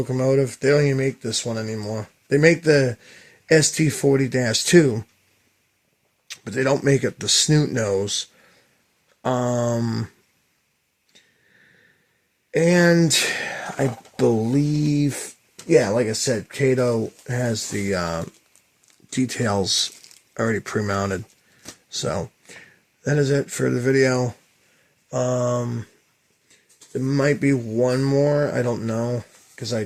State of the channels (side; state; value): both; identical; correlation 1.00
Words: They don't even make this one anymore. They make the SD40-2, but they don't make it the snoot nose. And I believe, yeah, like I said, Kato has the details already pre-mounted. So that is it for the video. There might be one more, I don't know, because I